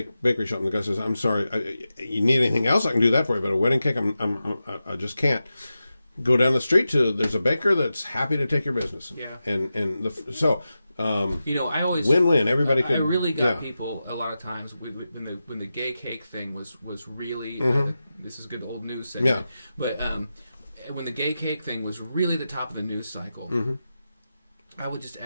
shop, and the guy says, "I'm sorry, you need anything else? I can do that for you, but a wedding cake, I just can't." Go down the street there's a baker that's happy to take your business. Yeah. I always win-win. Everybody could. I really got people a lot of times when the gay cake thing was really this is good old news segment. Yeah. But when the gay cake thing was really the top of the news cycle, I would just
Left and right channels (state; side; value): inverted; both; correlation -0.92